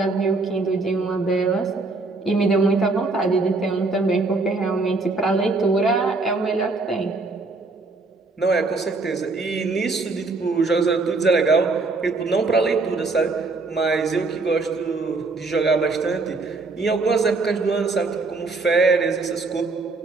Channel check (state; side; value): quieter; left; 3.7 dB